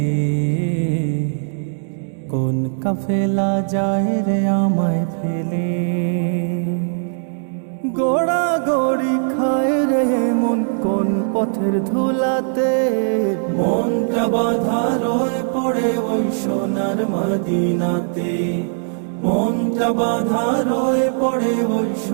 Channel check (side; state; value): left; silent; digital silence